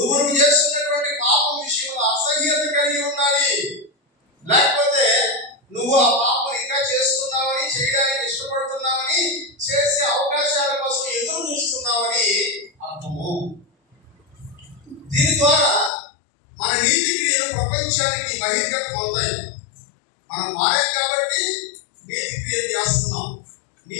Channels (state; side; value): drops out; right; at 15.9 s